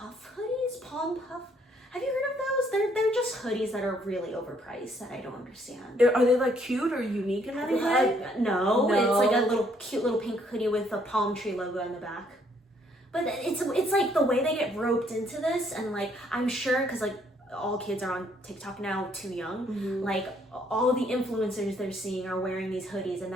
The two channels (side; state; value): both; normal; correlation 0.67